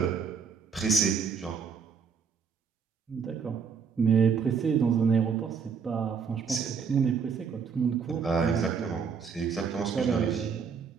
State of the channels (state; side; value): quieter; left; 6.2 dB